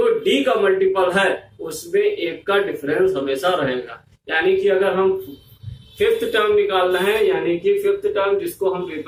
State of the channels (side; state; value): both; identical; correlation 1.00